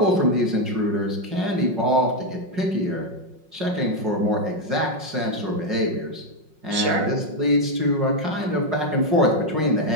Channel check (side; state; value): left; late; 5.5 ms